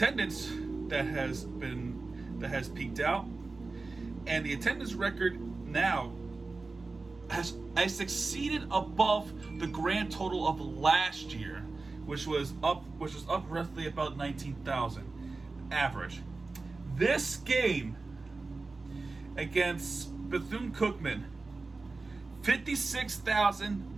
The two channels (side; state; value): left; quieter; 3.7 dB